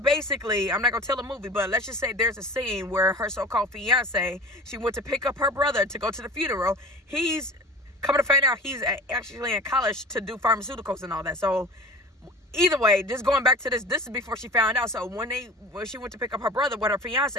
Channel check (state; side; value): normal; both; correlation 0.38